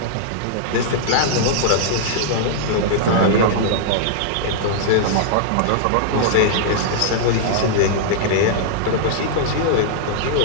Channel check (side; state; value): both; different; correlation -0.01